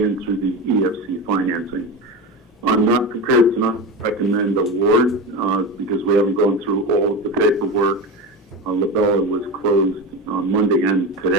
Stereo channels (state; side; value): normal; both; correlation 0.23